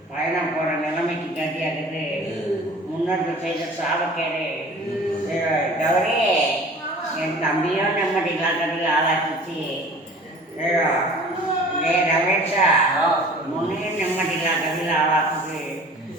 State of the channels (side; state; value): both; normal; correlation 0.45